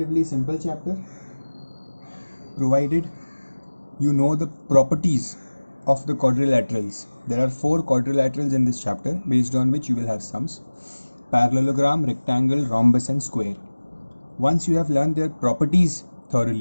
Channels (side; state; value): both; inverted; correlation -1.00